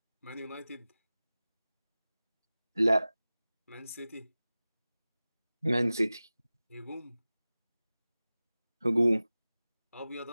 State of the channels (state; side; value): inverted; both; correlation -0.97